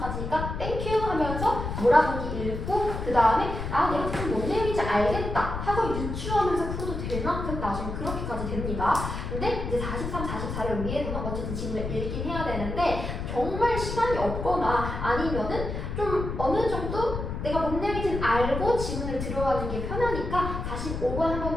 땡큐 하면서 몰아보기 읽고 그 다음에 아 내가 지금 뭔 내용인지 알겠다 하고 유추하면서 풀어도 될 만큼 나중에 그렇게까지 됩니다. 근데 이제 43, 44를 위해서는 어쨌든 지문을 읽긴 해야 되는데 정말 시간이 없거나 아니면은 좀 어느 정도 내가 뭔 내용인지는 알고 지문을 들어가는 게 편하니까 45번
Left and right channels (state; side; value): noise; left; rumble, 5 dB below the sound